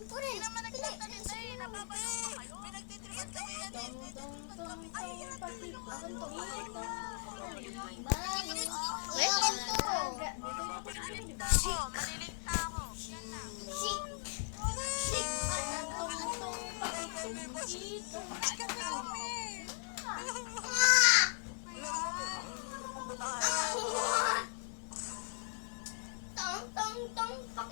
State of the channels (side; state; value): right; silent; digital silence